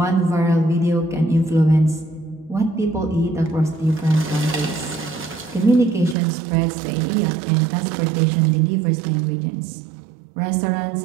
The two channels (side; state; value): left; drops out; at 6.2 s